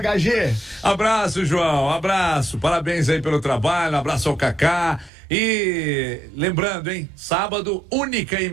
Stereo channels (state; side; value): drops out; left; at 5.1 s